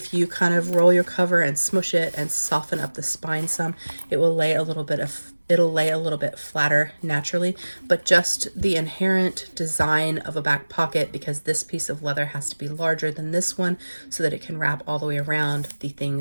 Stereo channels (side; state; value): both; inverted; correlation -1.00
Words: you kind of roll your cover and smush it and soften up the spine some, it will lay a little bit flatter naturally. But just the inherent design of a back pocket, because this piece of leather has to be larger than this one so that it can wrap all the way around the